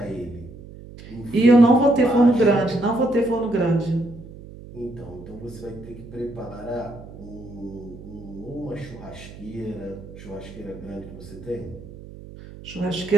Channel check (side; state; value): right; noise; hum, 16 dB below the sound